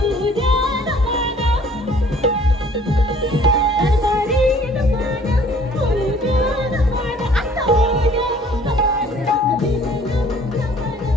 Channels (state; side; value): normal; both; correlation 0.55